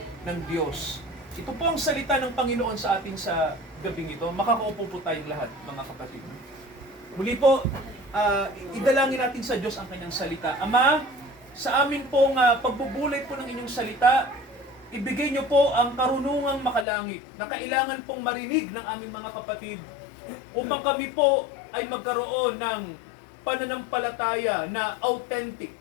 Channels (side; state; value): right; drops out; at 16.9 s